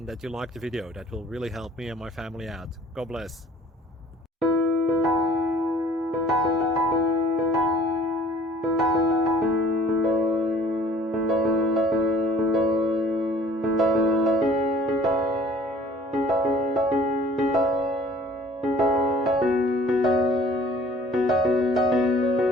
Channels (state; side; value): normal; both; correlation 0.52